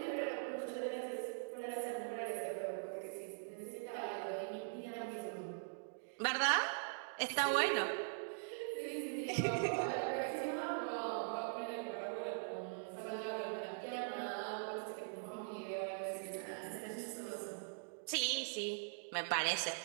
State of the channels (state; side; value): silent; left; digital silence